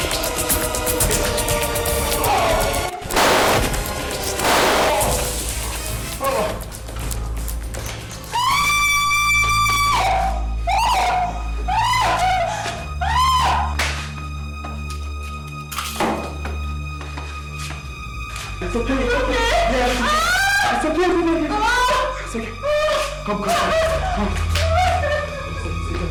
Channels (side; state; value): both; identical; correlation 1.00